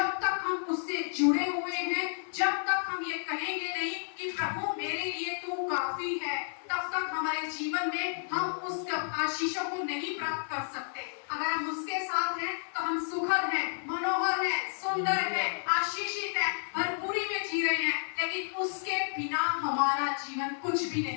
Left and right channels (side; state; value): right; silent; 57 dB below the other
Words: तक हम उससे जुड़े हुए हैं, जब तक हम ये कहेंगे नहीं कि प्रभु मेरे लिए तू काफी है, तब तक हमारे जीवन में हम उस आशीषों को नहीं प्राप्त कर सकते। अगर हम उसके साथ हैं तो हम सुखद हैं, मनोहर हैं, सुंदर हैं, आशीषित हैं, भरपूरी में जी रहे हैं। लेकिन उसके बिना हमारा जीवन कुछ भी